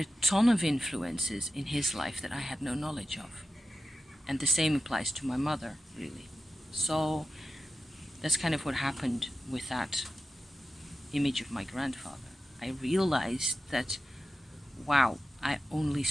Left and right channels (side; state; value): both; normal; correlation 0.92